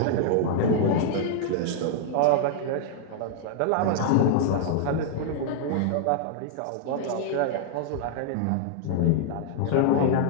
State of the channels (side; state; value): both; different; correlation -0.01